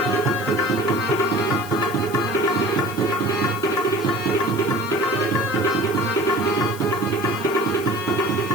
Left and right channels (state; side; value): noise; left; hiss, 16 dB below the sound